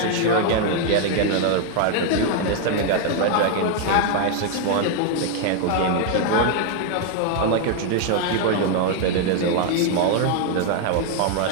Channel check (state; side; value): different; both; correlation 0.00